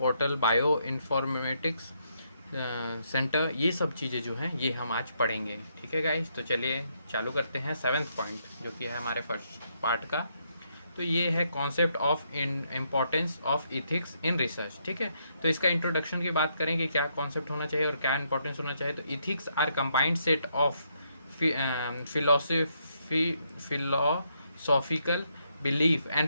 bio informatics centre, ये सब चीज़ें जो हैं ये हम आज पढ़ेंगे। ठीक है गाइस, तो चलिए चालू करते हैं सेवेंथ पॉइंट जो कि है हमारे फर्स्ट पार्ट का। तो ये है concept of importance of ethics in research. ठीक है, तो इसका इंट्रोडक्शन की बात करें कि क्या कॉन्सेप्ट होना चाहिए और क्या इंपॉर्टेंस होना चाहिए। तो ethics are combined set of philosophical belief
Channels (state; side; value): inverted; both; correlation -0.76